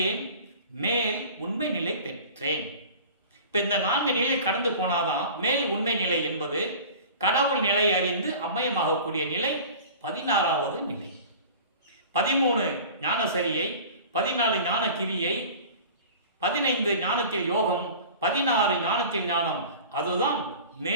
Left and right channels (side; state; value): both; inverted; correlation -0.40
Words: மேல் உண்மை நிலை பெற்றேன். இப்போ இந்த 4 நிலை கடந்து போனாதான் மேல் உண்மை நிலை என்பது கடவுள் நிலை அறிந்து அம்மயமாகக்கூடிய நிலை 16வது நிலை. 13 ஞான சரியை, 14 ஞான கிரியை, 15 ஞானத்தில் யோகம், 16 ஞானத்தில் ஞானம். அதுதான்